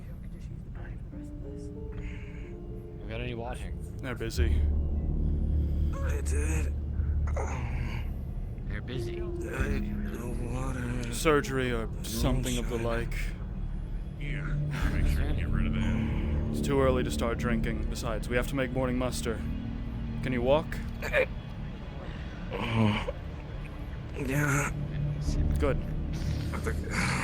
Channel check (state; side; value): identical; both; correlation 1.00